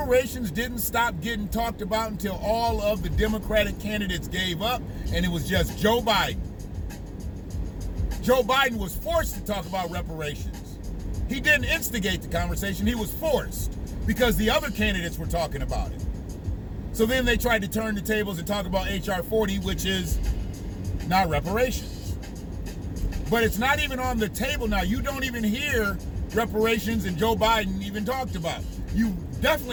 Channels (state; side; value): identical; both; correlation 1.00